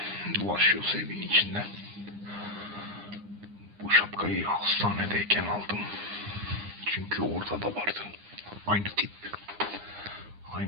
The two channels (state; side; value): late; left; 9.8 ms